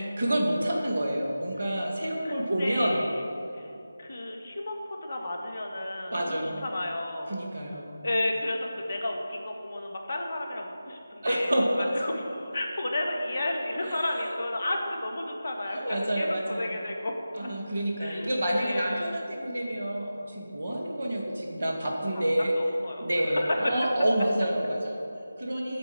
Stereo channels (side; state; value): both; inverted; correlation -0.94